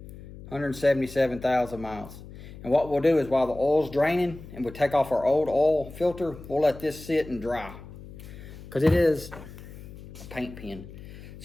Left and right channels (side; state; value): left; noise; hum, 15 dB below the sound